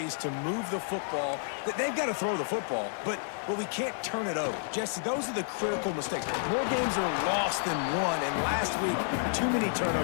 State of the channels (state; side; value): silent; right; 58 dB below the other